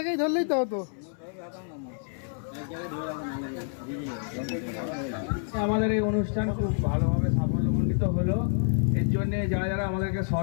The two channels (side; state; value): right; silent; 59 dB below the other